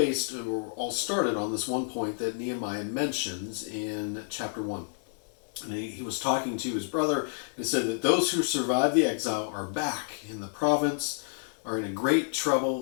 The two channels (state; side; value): silent; right; digital silence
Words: or all started on this one point that Nehemiah mentions in chapter 1. And he was talking to his brother and said that those who survived the exile are back in the province, are in a great